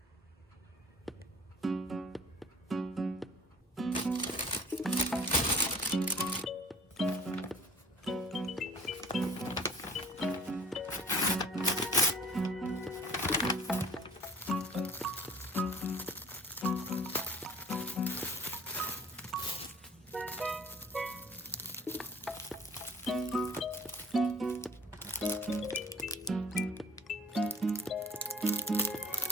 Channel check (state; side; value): normal; both; correlation 0.49